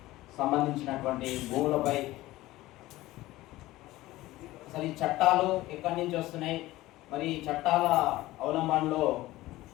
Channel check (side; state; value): right; quieter; 17.4 dB